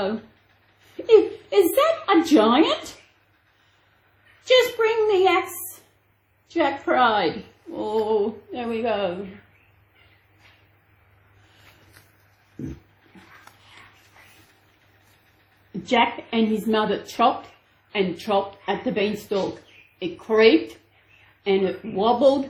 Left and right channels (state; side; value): identical; both; correlation 1.00